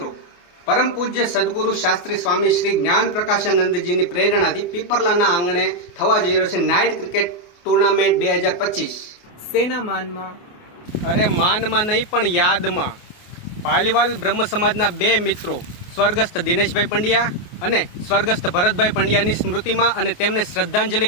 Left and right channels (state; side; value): late; right; 28 ms